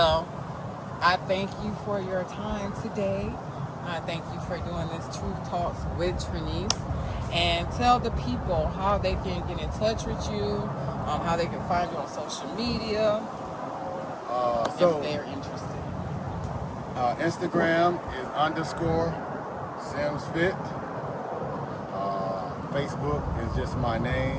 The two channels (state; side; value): identical; both; correlation 1.00